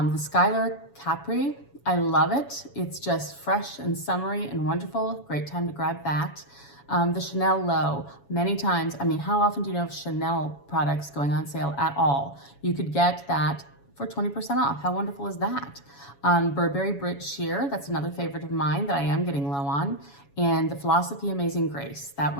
Skylar Capri, I love it. It's just fresh and summery and wonderful. Great time to grab that. The Chanel Low, many times, how often do you know of Chanel products going on sale at all? You could get that for 20% off. How wonderful is that? Burberry Brit Sheer, that's another favorite of mine that I am getting low on. And the Philosophy Amazing Grace, that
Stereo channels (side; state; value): right; late; 7.1 ms